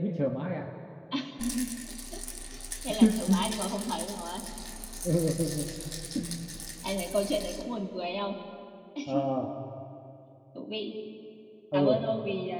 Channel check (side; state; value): both; identical; correlation 1.00